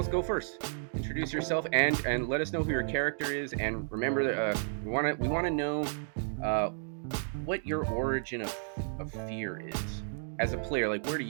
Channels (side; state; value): left; silent; digital silence